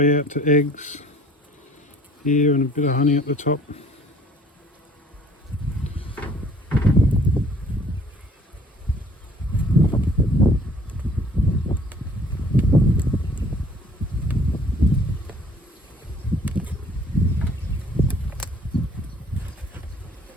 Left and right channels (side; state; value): both; normal; correlation 0.55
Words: out to eggs here, and a bit of honey at the top.